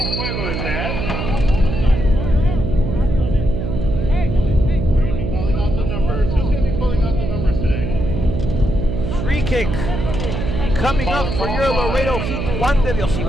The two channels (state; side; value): noise; right; hum, 3 dB below the sound